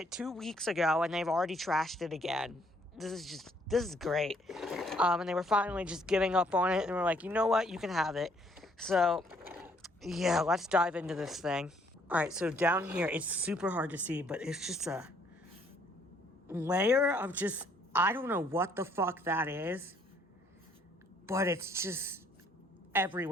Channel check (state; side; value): normal; both; correlation 0.65